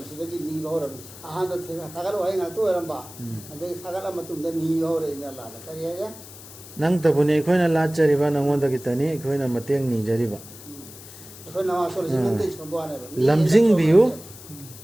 सिदगी नीबाव रब आहां द थागत वही हातो रंबा अदे थागत मतुंग द नीबाव रे अल्लाह द करिया नंग तबुनी अखोइना लाचरिबा नंगोंदगी तनी अखोइना मतेंग नी जरिबा अखोइ नमाज सोल जिन ते छबवाने लमजिंग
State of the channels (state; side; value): noise; left; hiss, 17 dB below the sound